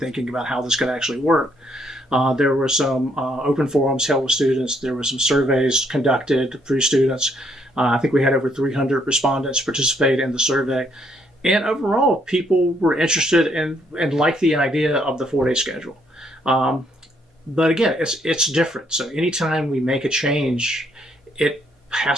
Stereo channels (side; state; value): both; normal; correlation 0.71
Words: about how this could actually work. There were some open forums held with students. There were some surveys conducted through students. I think we had over 300 respondents participate in the survey. And overall, people were interested and liked the idea of the 4-day schedule. But again, it's different. So anytime we make a change, it